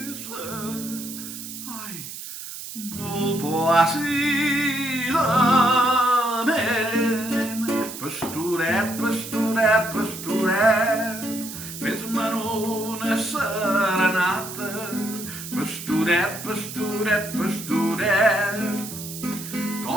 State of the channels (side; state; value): right; noise; hiss, 10 dB below the sound